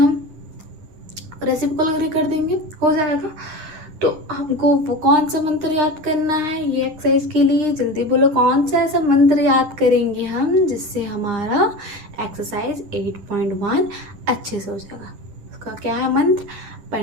रेसिप्रोकल कर देंगे, हो जाएगा। तो हमको वो कौन सा मंत्र याद करना है ये एक्सरसाइज के लिए, जल्दी बोलो कौन सा ऐसा मंत्र याद करेंगे हम जिससे हमारा एक्सरसाइज 8.1 अच्छे से हो जाएगा। उसका क्या है मंत्र,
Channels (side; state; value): left; late; 9.8 ms